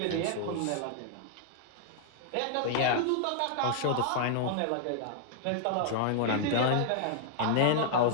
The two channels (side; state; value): both; different; correlation -0.01